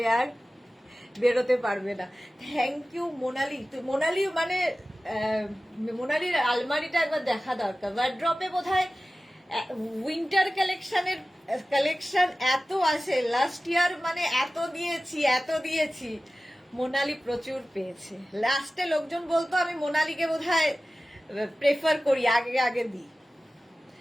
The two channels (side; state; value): both; normal; correlation 0.96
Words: আর বেরোতে পারবে না। Thank you Monali. মোনালি মানে মোনালির আলমারিটা একবার দেখা দরকার। ওয়ার্ড্রপে বোধহয় উইন্টার কালেকশন এত আছে। লাস্ট ইয়ার মানে এত দিয়েছি। মোনালি প্রচুর পেয়েছে। লাস্টে লোকজন বলতো আমি মোনালিকে বোধহয় প্রেফার করি, আগে দিই।